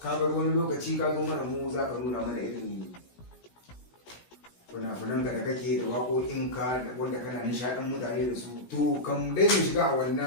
ka bar wani lokaci ka zo mana mu za ka nuna mana irin fina-finanka da kake da waƙoƙinka wanda kana nishaɗin mutane da su. To kam dai mu shiga a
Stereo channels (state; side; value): late; right; 17 ms